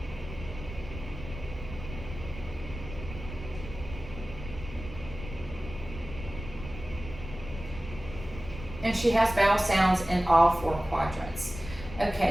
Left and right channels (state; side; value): noise; left; rumble, 11 dB below the sound